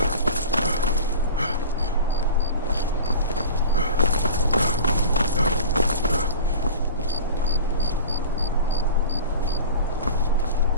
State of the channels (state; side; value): inverted; both; correlation -0.35